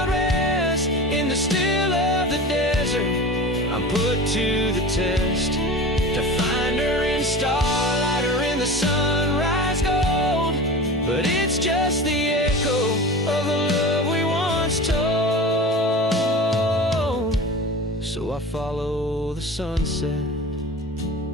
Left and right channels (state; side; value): normal; both; correlation 0.33